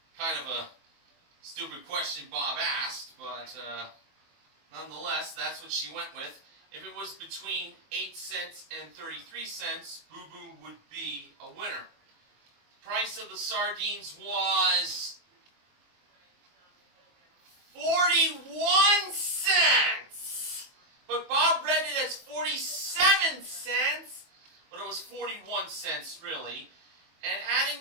Kind of a stupid question Bob asked, but nonetheless, that's what she went with. If it was between 8 cents and 33 cents, Boo Boo would be a winner. Price of the sardines was 41 cents. But Bob read it as 47 cents, but it was 41 cents really. And adding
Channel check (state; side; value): late; left; 22 ms